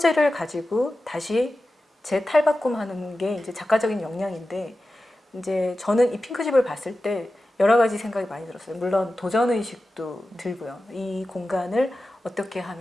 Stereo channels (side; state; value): both; normal; correlation 0.94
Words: 가지고 다시 재탈바꿈하는 게 이제 작가적인 역량인데 이제 저는 이 핑크집을 봤을 때 여러 가지 생각이 많이 들었어요. 물론 도전 의식도 들고요. 이 공간을 어떻게